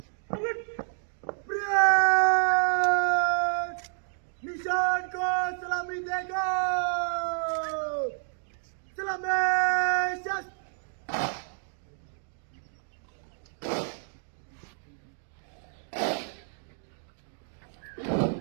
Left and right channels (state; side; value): silent; left; 58 dB below the other